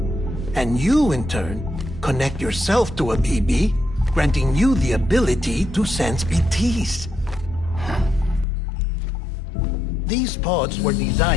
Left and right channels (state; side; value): drops out; right; at 8.5 s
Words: And you, in turn, connect yourself to a BB, granting you the ability to sense BTs. These pods were